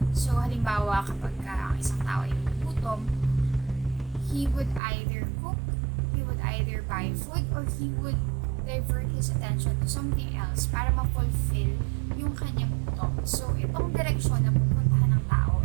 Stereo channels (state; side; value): drops out; left; at 4.8 s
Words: So, halimbawa, kapag ang isang tao ay gutom, he would either cook, he would either buy food, or he would divert his attention to something else para ma-fulfill yung kanyang gutom. So, itong direksyon na pupuntahan ng tao,